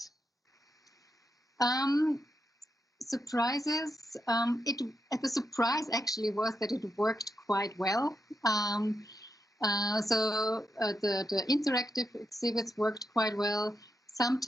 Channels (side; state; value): both; normal; correlation 0.84